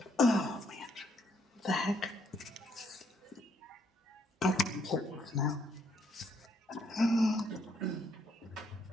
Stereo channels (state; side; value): normal; both; correlation 0.71